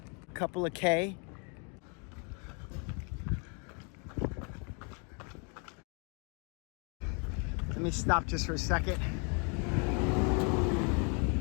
a couple of K. Let me stop just for a second.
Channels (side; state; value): right; quieter; 36.4 dB